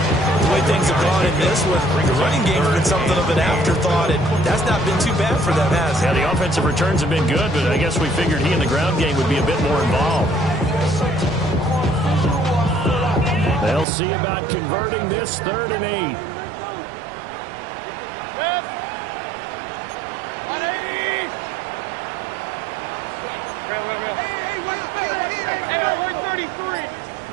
The way things have gone in this one, the running game's been something of an afterthought, and that's not been too bad for them, has it? Yeah, the offensive returns have been good, but I guess we figured he in the ground game would be a bit more involved. They'll see about converting this 3rd and 8.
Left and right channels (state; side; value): drops out; left; at 13.9 s